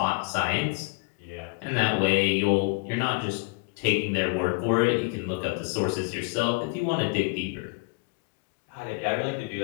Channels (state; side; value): quieter; right; 28.3 dB